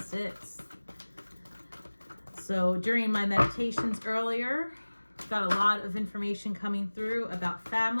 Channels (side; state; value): both; inverted; correlation -1.00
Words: So during my meditations earlier, got a lot of information coming through about